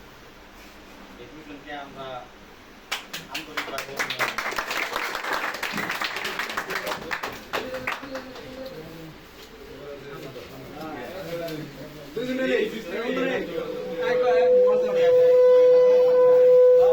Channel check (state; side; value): identical; both; correlation 1.00